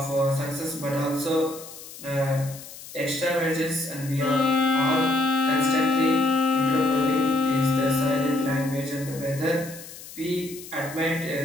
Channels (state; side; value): noise; left; hiss, 15 dB below the sound